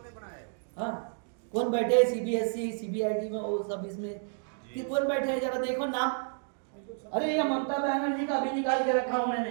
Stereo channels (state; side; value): silent; left; 57 dB below the other